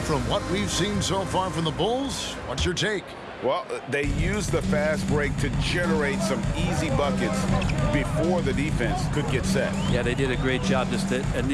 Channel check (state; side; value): identical; both; correlation 1.00